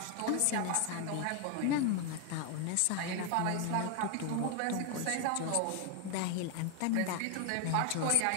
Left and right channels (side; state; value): both; different; correlation 0.01